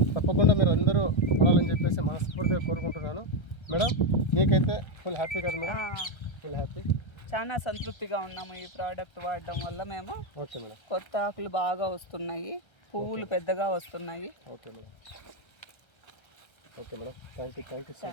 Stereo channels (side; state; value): right; late; 1.3 ms